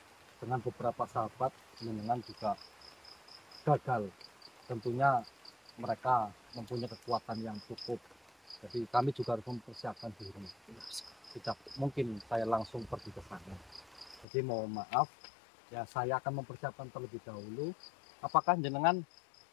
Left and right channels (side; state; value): right; drops out; at 14.2 s